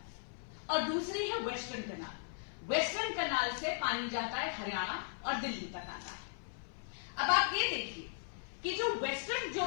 और दूसरी है वेस्टर्न कनाल, वेस्टर्न कनाल से पानी जाता है हरियाणा और दिल्ली तक आता है। अब आप ये देखिए कि जो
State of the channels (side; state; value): right; silent; 53 dB below the other